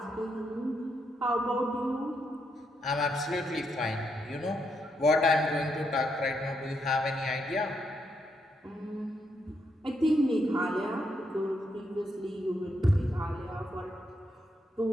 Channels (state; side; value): normal; both; correlation 0.78